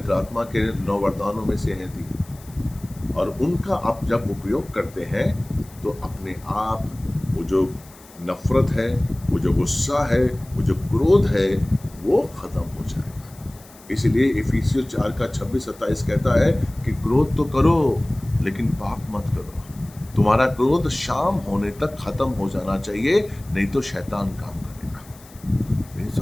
आत्मा के 9 वरदानों में से है थी। और उनका आप जब उपयोग करते हैं तो अपने आप वो जो नफरत है, वो जो गुस्सा है, वो जो क्रोध है, वो खत्म हो जाएगा। इसलिए इफिसियों 4 का 26-27 कहता है कि क्रोध तो करो लेकिन पाप मत करो। तुम्हारा क्रोध शाम होने तक खत्म हो जाना चाहिए, नहीं तो शैतान काम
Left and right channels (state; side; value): noise; left; hiss, 23 dB below the sound